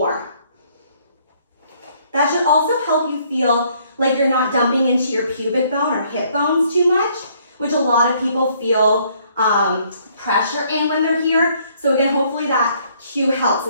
That should also help you feel like you're not dumping into your pubic bone or hip bones too much, which a lot of people feel pressure in when they're here. So again, hopefully that cue helps.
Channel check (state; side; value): inverted; both; correlation -0.65